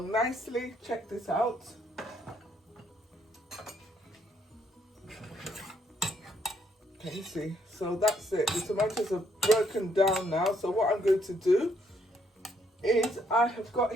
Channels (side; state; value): both; normal; correlation 0.71